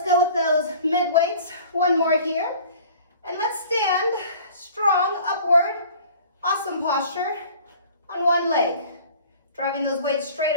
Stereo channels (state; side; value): inverted; both; correlation -0.48